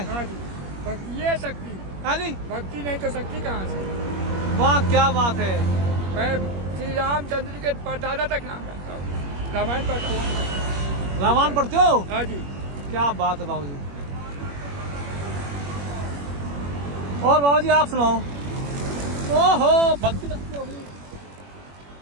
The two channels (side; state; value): left; late; 21 ms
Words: भक्ति है शक्ति। हाँ जी, भक्ति नहीं तो शक्ति कहाँ से? वाह क्या बात है। मैं श्री रामचंद्र के दादा तक नाम जानता हूँ, रामायण पढ़ता हूँ। रामायण पढ़ते हो? हाँ जी। क्या बात है बाबू जी। और बाबू जी आप सुनाओ। ओहो, भक्ति हो गई।